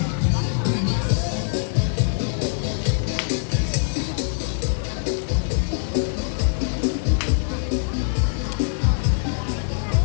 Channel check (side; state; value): right; silent; digital silence